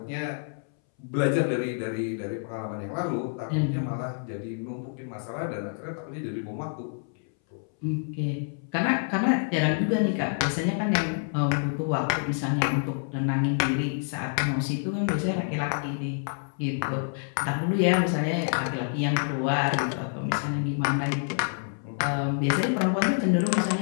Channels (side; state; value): right; silent; 60 dB below the other